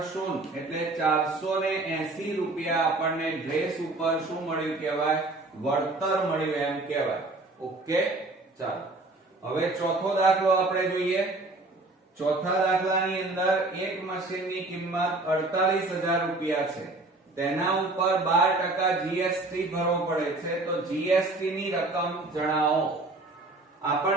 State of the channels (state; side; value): quieter; left; 3.0 dB